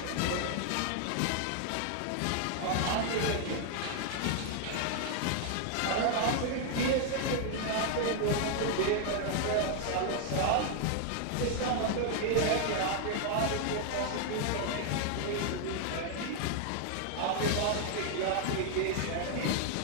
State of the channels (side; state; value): both; different; correlation 0.00